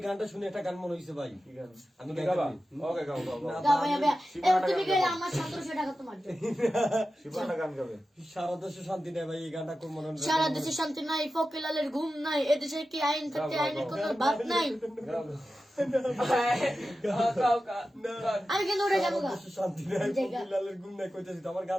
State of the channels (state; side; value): normal; both; correlation 0.93